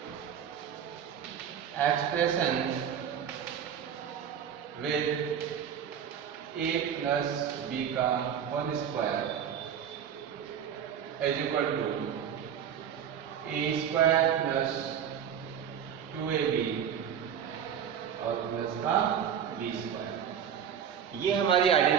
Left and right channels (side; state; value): left; quieter; 8.6 dB